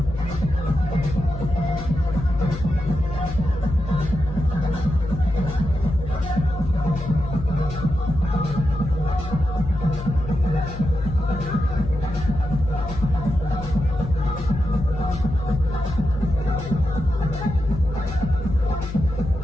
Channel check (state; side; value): noise; left; hum, 9 dB below the sound